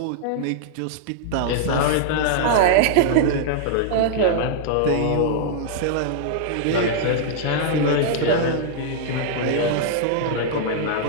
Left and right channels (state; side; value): different; both; correlation -0.01